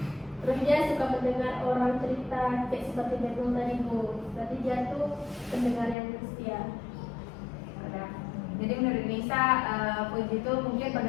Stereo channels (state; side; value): drops out; right; at 6.0 s